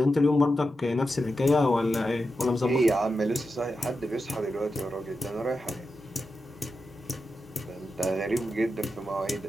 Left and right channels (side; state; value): both; normal; correlation 0.89